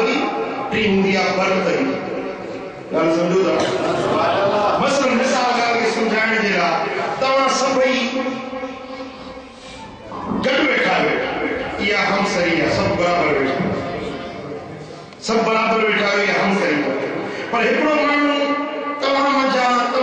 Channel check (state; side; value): identical; both; correlation 1.00